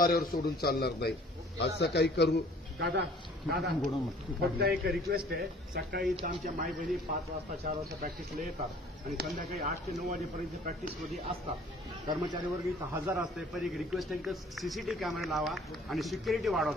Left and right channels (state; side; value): normal; both; correlation 0.53